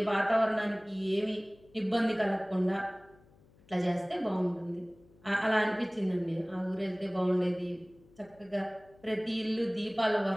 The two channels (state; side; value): noise; left; hum, 28 dB below the sound